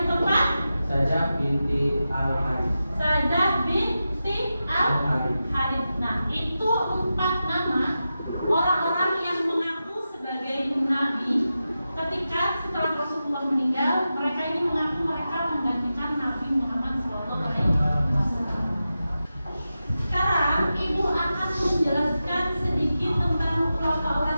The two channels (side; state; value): both; inverted; correlation -0.91